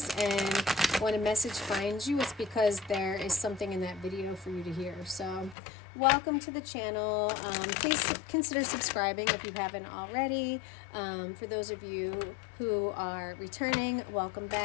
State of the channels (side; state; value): right; drops out; at 5.6 s